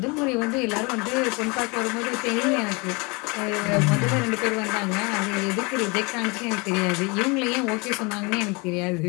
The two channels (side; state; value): right; quieter; 28.5 dB